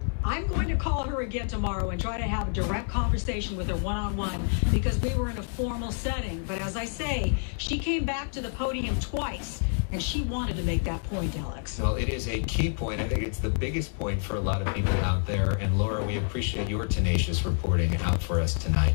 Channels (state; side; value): silent; right; 59 dB below the other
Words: I'm going to call her again tomorrow and try to have a direct conversation with her one-on-one because we were in a formal setting. But as I say, she came back to the podium twice. And she wanted to make that point, Alex. Well, it is a key point. I think it's the biggest point for a lot of people out there. And Laura, we appreciate your tenacious reporting out for us tonight.